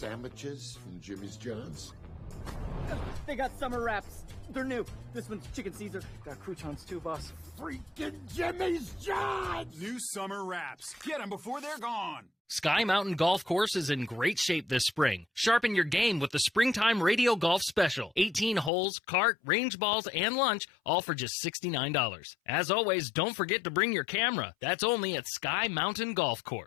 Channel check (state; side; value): drops out; right; at 18.7 s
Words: from Jimmy's John's? They got summer wraps. They're new. This one's chicken Caesar. Got croutons too, boss. Freaking Jimmy's John's! New summer wraps. Get them before they're gone. Sky Mountain Golf Course is in great shape this spring. Sharpen your game with the Springtime Radio Golf Special. 18 holes, cart, range balls, and lunch, all for just $69. As always, don't forget to bring your camera. That's only at Sky Mountain Golf